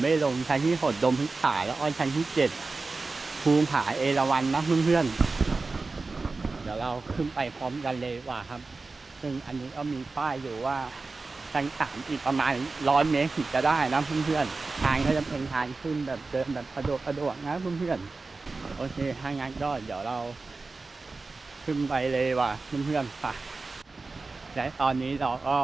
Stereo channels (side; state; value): left; quieter; 3.8 dB